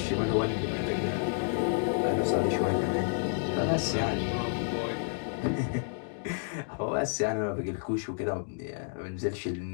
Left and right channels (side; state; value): right; silent; digital silence